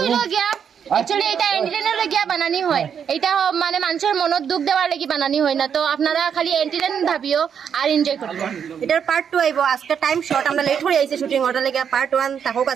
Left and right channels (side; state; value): left; quieter; 7.7 dB